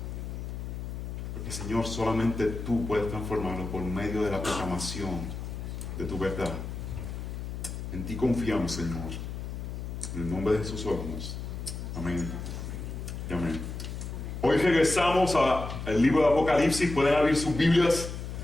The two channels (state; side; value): noise; left; hum, 6 dB below the sound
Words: Porque, Señor, solamente tú puedes transformarlo por medio de la proclamación de tu verdad. En ti confiamos, Señor. En el nombre de Jesús oramos. Amén. Y amén. Hoy regresamos al libro de Apocalipsis. Pueden abrir sus Biblias